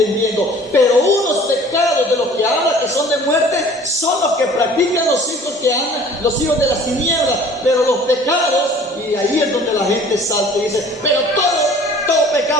pero unos pecados de los que habla que son de muerte son los que practican los hijos de las tinieblas. Pero los pecados, y ahí es donde la gente salta y dice, pero todo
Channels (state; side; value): normal; both; correlation 0.49